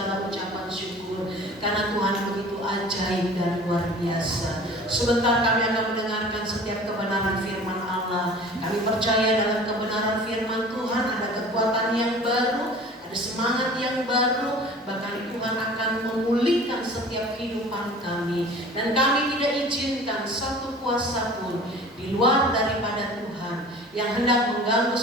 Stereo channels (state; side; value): normal; both; correlation 0.44